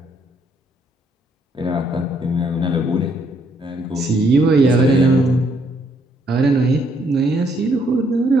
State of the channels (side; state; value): both; normal; correlation 0.70